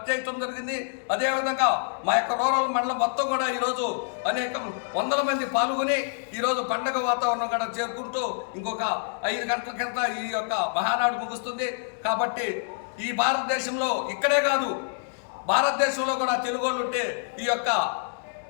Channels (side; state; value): right; silent; digital silence